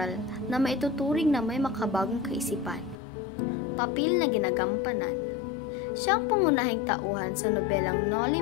na maituturing na may makabagong kaisipan. Papel na ginagampanan. Siya ang pangunahing tauhan sa nobelang Noli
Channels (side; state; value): right; drops out; at 3.0 s